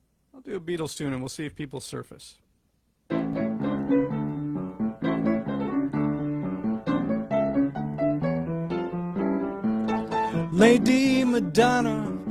I'll do a Beatles tune, and we'll see if people surface. Lady Madonna,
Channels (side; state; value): both; identical; correlation 1.00